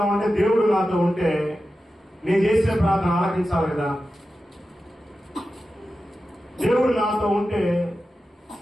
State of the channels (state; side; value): normal; both; correlation 0.92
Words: దేవుడు నాతో ఉంటే నేను చేసే ప్రార్థన ఆలకించాలి కదా, దేవుడు నాతో ఉంటే